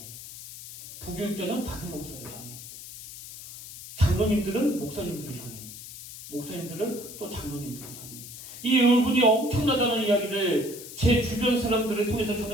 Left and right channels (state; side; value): noise; left; hiss, 13 dB below the sound